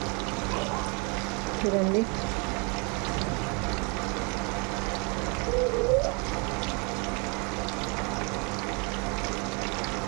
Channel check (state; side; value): quieter; left; 32.6 dB